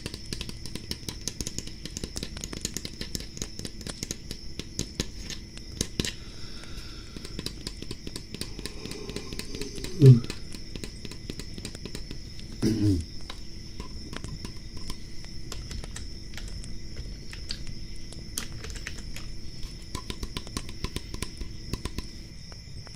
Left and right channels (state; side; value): identical; both; correlation 1.00